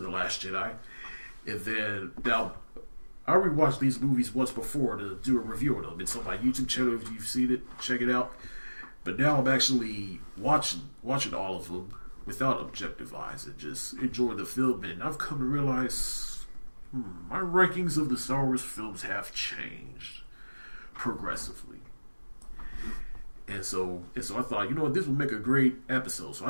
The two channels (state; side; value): inverted; both; correlation -1.00